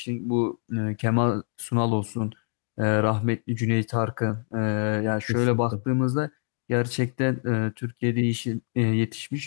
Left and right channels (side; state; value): right; silent; 60 dB below the other